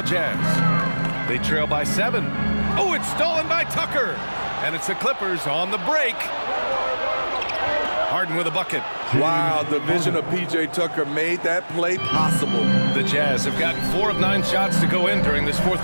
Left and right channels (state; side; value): inverted; both; correlation -1.00